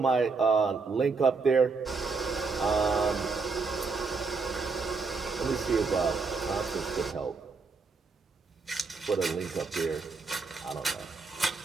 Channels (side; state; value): left; quieter; 4.5 dB